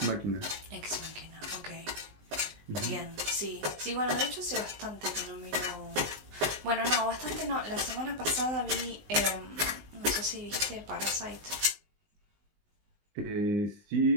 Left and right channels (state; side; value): late; left; 20 ms